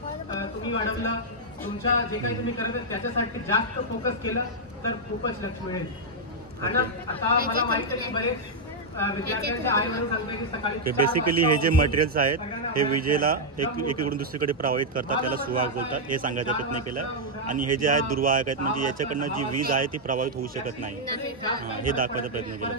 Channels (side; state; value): both; normal; correlation -0.04